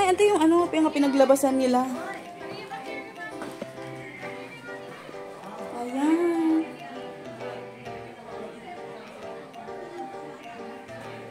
ito yung ano, yung pinaglabasan nila. Ayan.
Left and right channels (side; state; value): both; identical; correlation 1.00